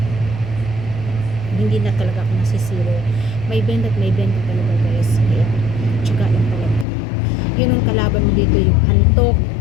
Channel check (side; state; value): right; drops out; at 6.9 s